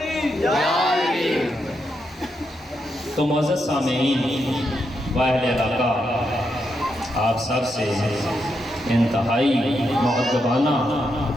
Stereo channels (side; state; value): both; normal; correlation 0.82